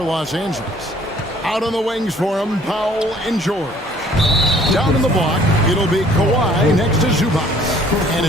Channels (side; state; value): both; normal; correlation 0.57